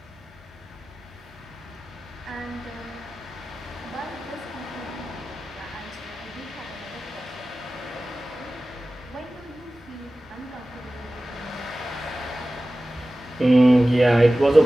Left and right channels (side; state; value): both; normal; correlation 0.96